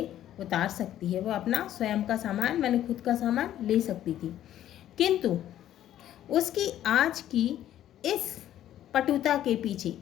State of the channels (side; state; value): right; quieter; 12.0 dB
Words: उतार सकती है। वो अपना स्वयं का सामान, मैंने खुद का सामान ले सकती थी। किंतु उसकी आज की इस पटुता के पीछे,